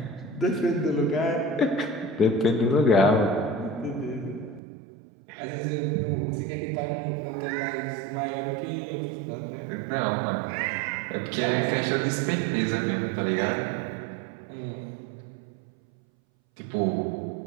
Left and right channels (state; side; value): drops out; left; at 4.6 s